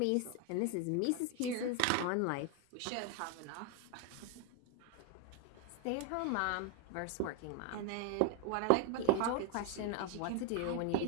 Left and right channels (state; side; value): different; both; correlation 0.01